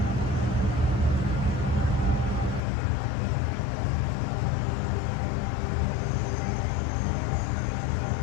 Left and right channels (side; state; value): right; drops out; at 2.6 s